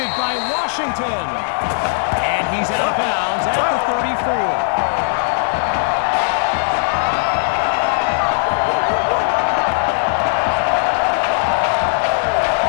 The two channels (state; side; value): silent; right; digital silence